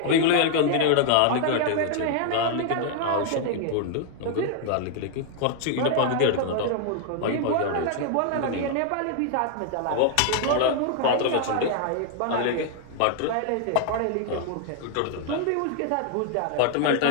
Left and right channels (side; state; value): both; different; correlation 0.00